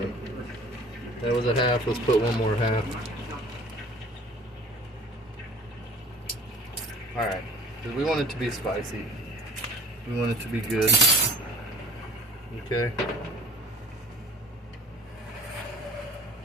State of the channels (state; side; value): normal; both; correlation 0.47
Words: That was a half, let's put one more half. Alright, because we want it to be spicy. We want it to be good. Okay.